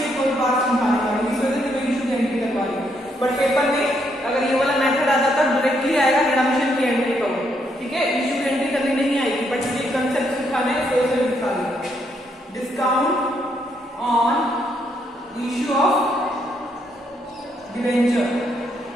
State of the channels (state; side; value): normal; both; correlation 0.75